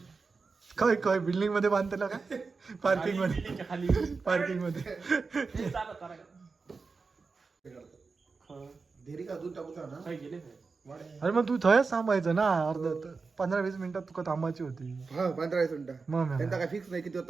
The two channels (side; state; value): left; quieter; 4.5 dB